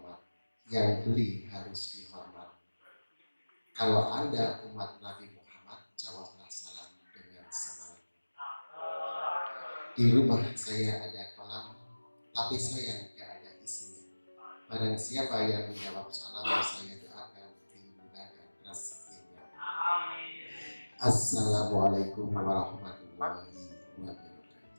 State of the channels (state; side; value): inverted; both; correlation -1.00